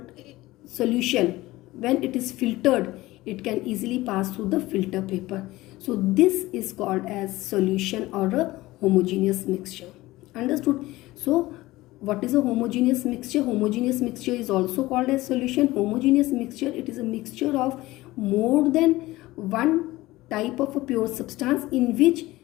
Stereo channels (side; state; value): right; quieter; 18.5 dB